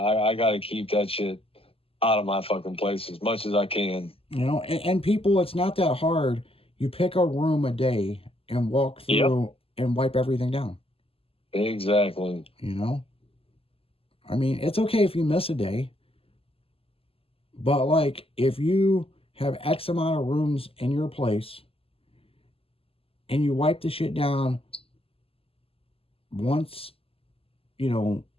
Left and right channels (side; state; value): right; late; 0.27 ms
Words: got to keep that shit out of my fucking place as much as I can. You know, and people, it's not that hard. You pick a room a day and walk Yep. through and wipe everything down. Exactly. You know? I mean, it's okay if you miss a day, but like if you have X amount of rooms in your place and you wipe the shit down once, you know,